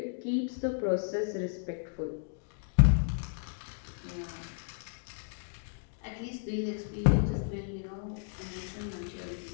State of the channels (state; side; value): silent; right; digital silence